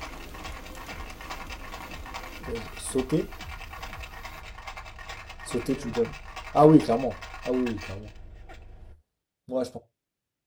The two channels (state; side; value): identical; both; correlation 1.00